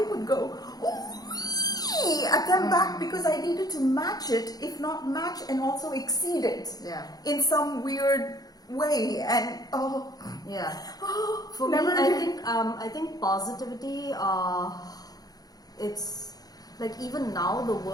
would go "Ooh-wee" at them back because I needed to match it, if not match and also exceed it. Yeah. In some weird way. And Yeah. for Me, never I think positivity. It's like even now the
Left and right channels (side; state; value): right; late; 0.19 ms